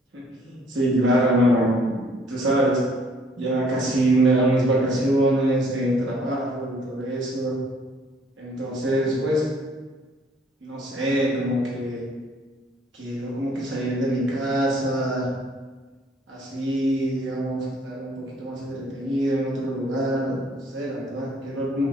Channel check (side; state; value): both; normal; correlation 0.61